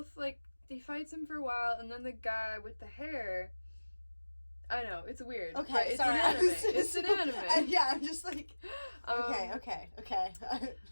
like, he fights him for a while, and then the guy with the hair, I know, it's weird. Okay, it's sorry. an anime. It's an anime. Yeah, I'm just like, okay.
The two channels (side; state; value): both; inverted; correlation -1.00